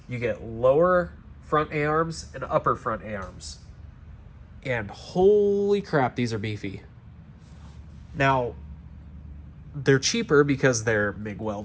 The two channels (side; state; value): both; identical; correlation 1.00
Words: You get lower front A-arms and upper front A-arms. And holy crap, these are beefy. Now, they're cheaper because they're MIG